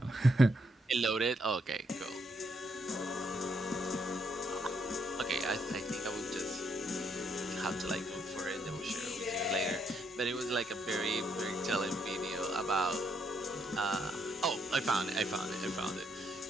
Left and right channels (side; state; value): both; normal; correlation 0.74